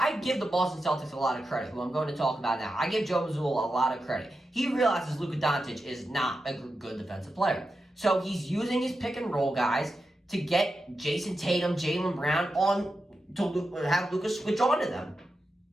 give the Boston Celtics a lot of credit, who I'm going to talk about now. I give Joe Mazzulla a lot of credit. He realizes Luka Doncic is not a good defensive player, so he's using his pick and roll guys to get Jason Tatum, Jaylen Brown on to have Luka switch on to them.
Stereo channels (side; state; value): both; normal; correlation 0.90